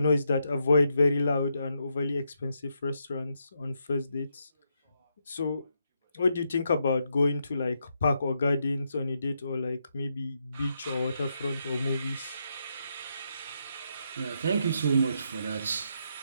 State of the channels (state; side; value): inverted; both; correlation -0.80